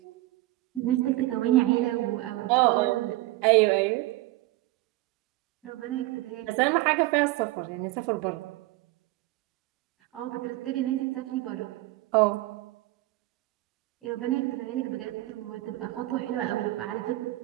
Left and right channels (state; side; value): quieter; left; 18.5 dB